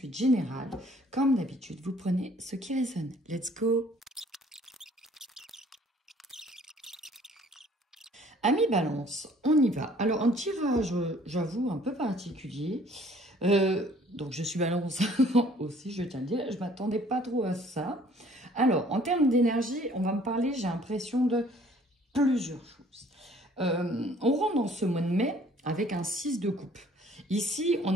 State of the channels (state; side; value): normal; both; correlation 0.57